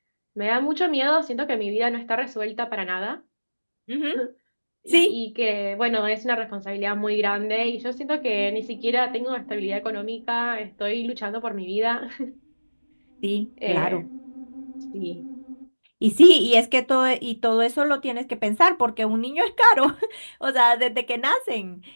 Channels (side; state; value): both; inverted; correlation -1.00